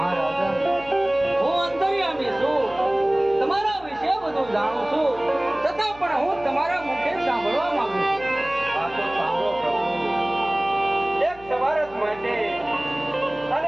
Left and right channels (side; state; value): left; noise; hum, 21 dB below the sound